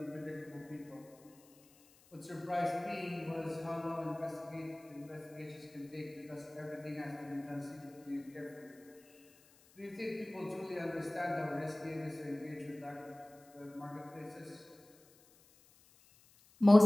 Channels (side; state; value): left; noise; hiss, 27 dB below the sound